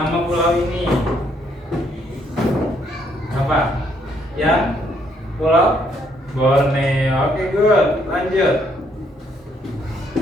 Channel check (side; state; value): both; normal; correlation 0.70